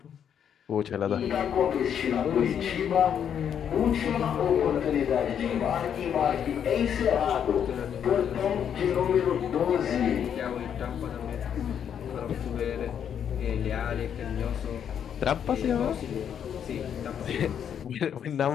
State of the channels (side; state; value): right; quieter; 8.5 dB